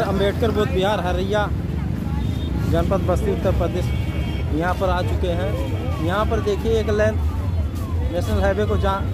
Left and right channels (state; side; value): identical; both; correlation 1.00